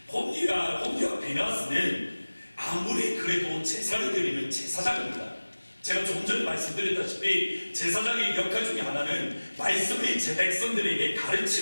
홈리와 비나스는 아무리 그래도 제사를 드리는 제사장입니다. 제가 조금 전에 말씀드렸다시피 제사장의 역할 중에 하나는 말씀을 제 백성들에게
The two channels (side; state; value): both; inverted; correlation -1.00